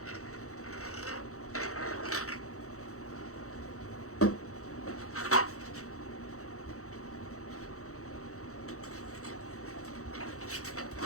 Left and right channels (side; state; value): right; late; 0.65 ms